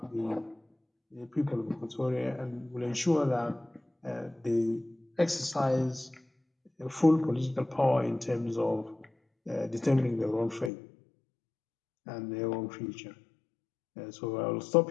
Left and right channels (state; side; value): drops out; right; at 10.7 s